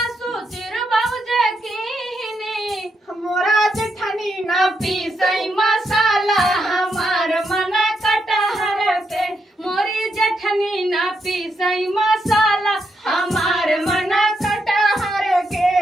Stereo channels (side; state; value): both; normal; correlation 0.81